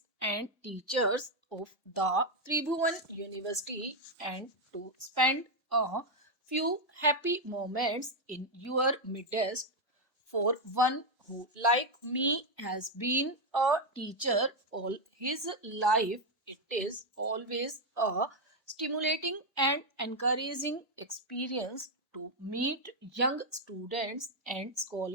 and teachers of the Tribhuvan University, and to spend a few happy moments in your midst. For one who, like me, has been a teacher all his life, it is always a stimulating and encouraging experience to meet young students and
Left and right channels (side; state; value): both; normal; correlation 0.03